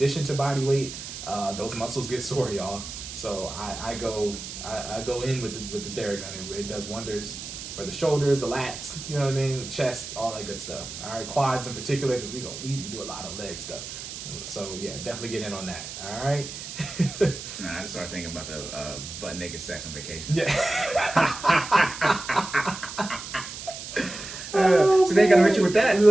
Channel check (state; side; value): noise; right; hiss, 10 dB below the sound